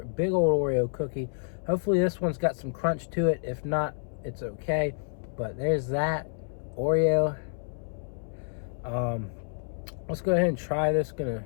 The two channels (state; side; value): silent; right; 59 dB below the other